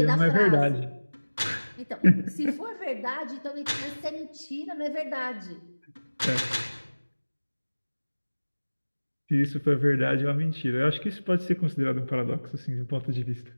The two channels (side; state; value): both; inverted; correlation -1.00